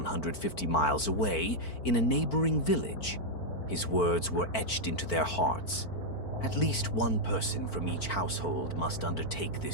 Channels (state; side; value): late; right; 4.5 ms